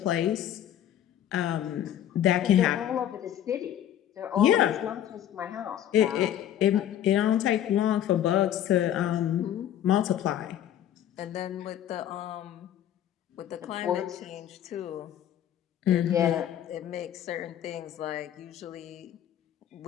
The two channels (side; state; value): right; quieter; 10.9 dB